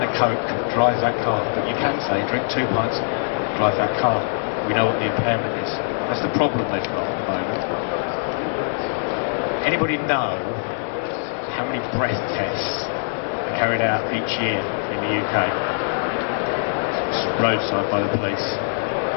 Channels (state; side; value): silent; right; digital silence